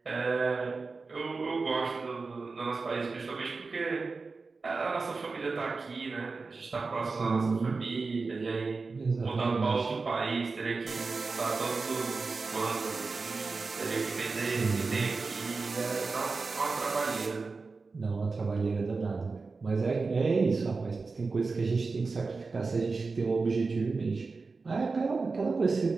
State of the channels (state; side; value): quieter; left; 4.2 dB